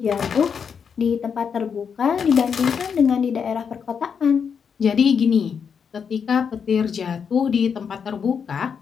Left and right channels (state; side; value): quieter; right; 6.7 dB